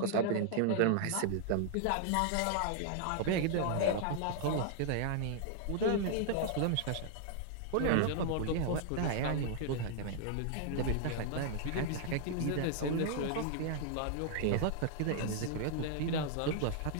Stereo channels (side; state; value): both; different; correlation -0.01